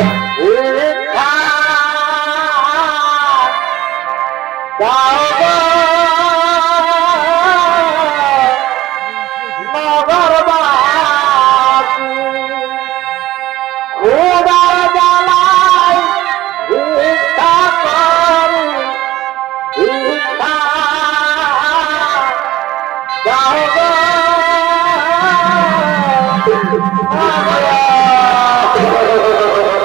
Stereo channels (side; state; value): left; quieter; 15.6 dB